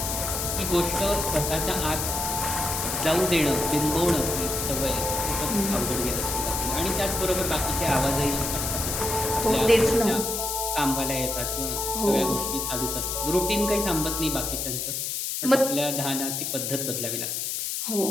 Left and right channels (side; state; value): left; noise; hiss, 2 dB below the sound